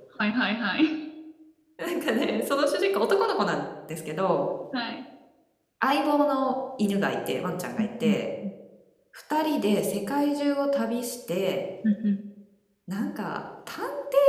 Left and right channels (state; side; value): identical; both; correlation 1.00